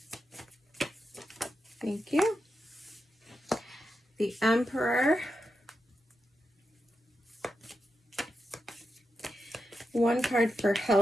Thank you. The Emperor. One card for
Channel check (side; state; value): both; normal; correlation 0.88